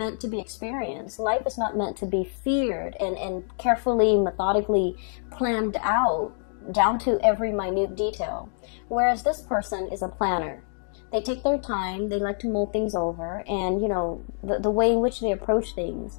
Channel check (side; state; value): right; silent; digital silence